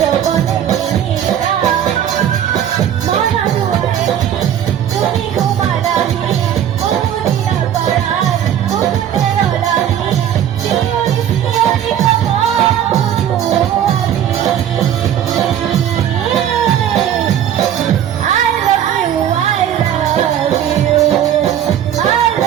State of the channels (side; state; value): left; quieter; 10.1 dB